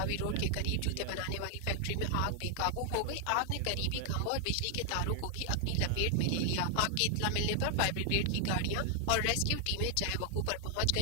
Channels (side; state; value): both; different; correlation 0.00